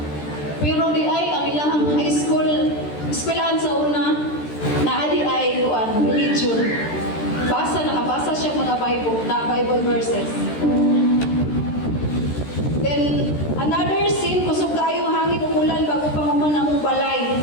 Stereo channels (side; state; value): right; late; 13 ms